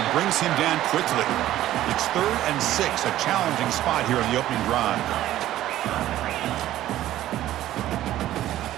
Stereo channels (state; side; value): quieter; left; 13.7 dB